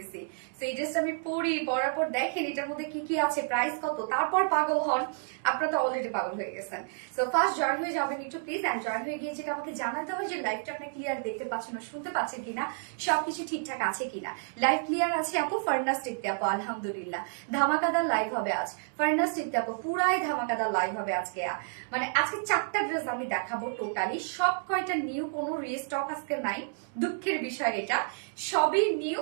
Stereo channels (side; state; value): left; silent; 58 dB below the other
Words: তো এই ড্রেসটা আমি পরার পর দেখেন এটার মধ্যে কি কি আছে, প্রাইস কত, তারপর পাগল হন। আপনারা তো অলরেডি পাগল হয়ে গেছেন। সো ফার্স্ট জয়েন হয়ে যাবেন একটু প্লিজ। এন্ড জয়েন হয়ে গিয়ে যেটা আমাকে জানাতে হবে যে লাইভটা আপনি ক্লিয়ার দেখতে পাচ্ছেন না শুনতে পাচ্ছেন কিনা, সবকিছু ঠিকঠাক আছে কিনা। লাইভ ক্লিয়ার আছে আপু? ফার্নাস টিকতে আপু আলহামদুলিল্লাহ। ধামাকাদার লাইভ হবে আজ। ফার্নাস টিকতে আপু পুরাই ধামাকাদার লাইভ হবে আজকে। মানে আজকে 4টা ড্রেস আমি দেখাবো টোটালি, সব কয়টা নিউ, কোনো রিস্টক আজকে নাই। দুঃখের বিষয় এটা, সবই নিউ।